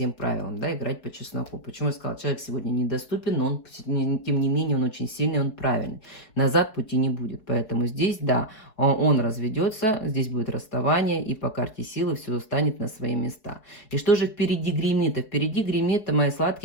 правилам, да, играть по чесноку. Почему я сказала, человек сегодня недоступен, но он, тем не менее, он очень сильный, он правильный. Назад пути не будет. Поэтому здесь, да, он разведется, здесь будет расставание, и по карте силы все станет на свои места. И что же впереди гремит? Впереди гремит, мои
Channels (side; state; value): right; late; 4.7 ms